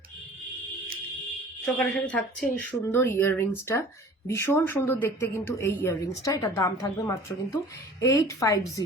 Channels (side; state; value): both; normal; correlation 0.46